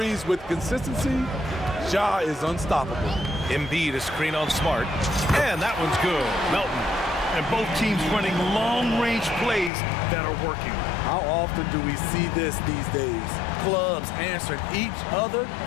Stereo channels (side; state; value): right; drops out; at 9.7 s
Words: with consistency, Ja is unstoppable. Embiid is screen on Smart. And that one's good. Melton. And both teams running long-range plays that are working. How often do we see this these days? Clubs answering each other